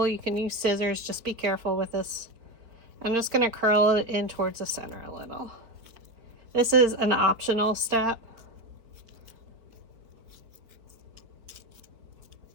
You can use scissors, just be careful with this. I'm just going to curl it in towards the center a little. This is an optional step.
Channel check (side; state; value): left; late; 4.5 ms